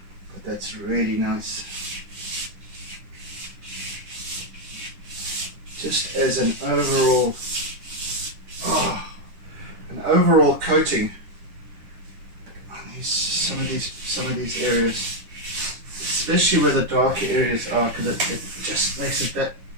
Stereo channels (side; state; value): left; late; 9.9 ms